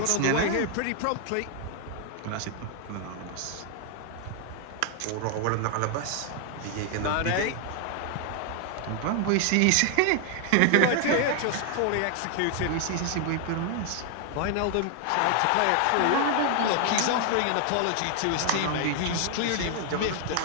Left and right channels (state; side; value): different; both; correlation 0.00